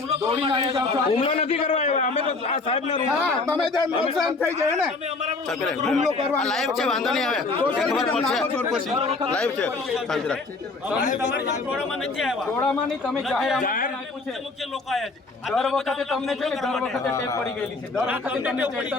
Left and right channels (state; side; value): quieter; right; 3.7 dB